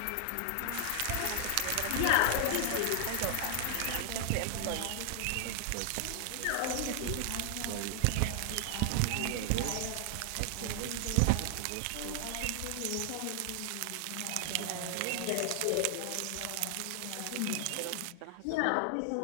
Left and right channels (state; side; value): different; both; correlation 0.00